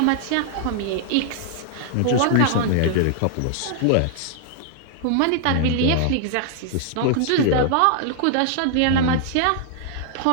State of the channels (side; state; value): both; different; correlation -0.01